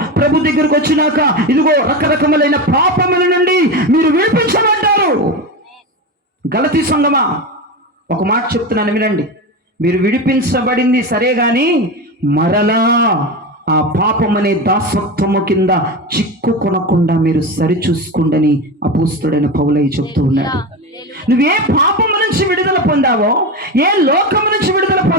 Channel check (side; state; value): both; normal; correlation 0.20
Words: ప్రభు దగ్గరకు వచ్చినాక ఇదిగో రకరకములైన పాపముల నుండి మీరు విడిపించబడ్డారు. గలతీ సంఘమా, ఒక మాట చెప్తున్నాను వినండి. మీరు విడిపించబడింది సరే గాని మరలా ఆ పాపం అనే దాసత్వము కింద చిక్కుకొనకుండా మీరు సరిచూసుకోండి అపోస్తలుడైన పౌలయ్య చెప్తూ ఉన్నాడు. నువ్వే పాపము నుంచి విడుదల పొందావో, ఏ లోకము నుంచి విడుదల